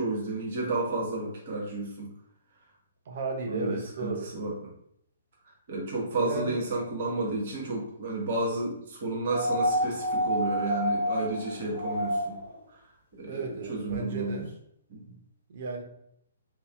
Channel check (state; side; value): inverted; both; correlation -0.54